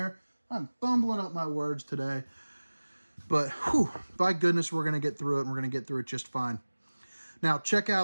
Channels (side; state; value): both; inverted; correlation -1.00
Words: I'm fumbling up my words today. But, whew, by goodness, we're going to get through it, and we're going to get through it just fine. Now, check